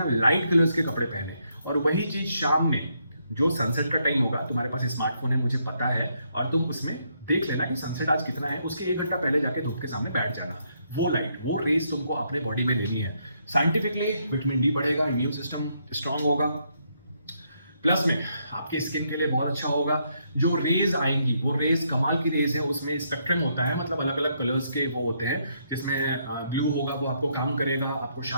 लाइट कलर्स के कपड़े पहने। और वही चीज शाम में जो सनसेट का टाइम होगा, तुम्हारे पास स्मार्टफोन है मुझे पता है, और तुम उसमें देख लेना कि सनसेट आज कितना है, उसके 1 घंटा पहले जाके धूप के सामने बैठ जाना। वो लाइट, वो रेस तुमको अपने बॉडी में लेनी है। साइंटिफिकली विटामिन डी बढ़ेगा, इम्यून सिस्टम स्ट्रांग होगा, प्लस में आपके स्किन के लिए बहुत अच्छा होगा। जो रेज आएंगी वो रेज कमाल की रेज है, उसमें स्पेक्ट्रम होता है, मतलब अलग अलग कलर्स के वो होते हैं, जिसमें ब्लू होगा वो आपको काम करेगा, आपको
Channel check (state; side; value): inverted; both; correlation -0.75